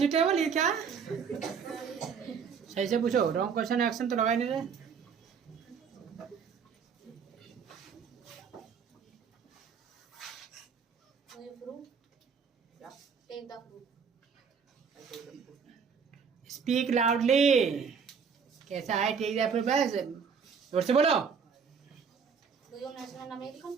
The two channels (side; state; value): left; quieter; 6.3 dB